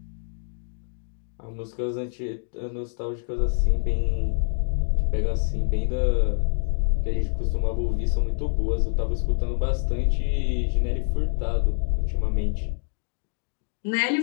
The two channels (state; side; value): silent; right; digital silence